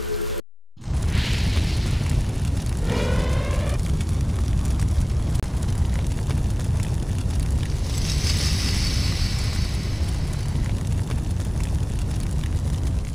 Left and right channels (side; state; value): both; normal; correlation 0.97